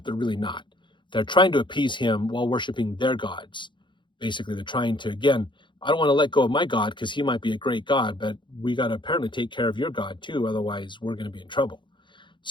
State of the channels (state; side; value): late; right; 0.23 ms